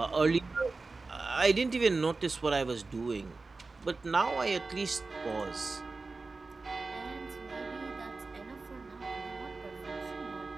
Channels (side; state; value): left; quieter; 3.8 dB